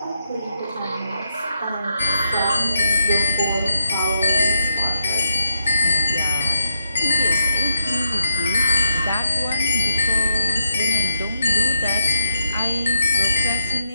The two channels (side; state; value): both; inverted; correlation -0.81